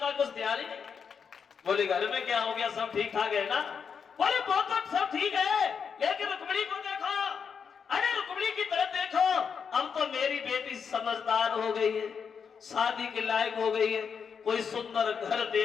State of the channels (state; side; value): quieter; right; 6.5 dB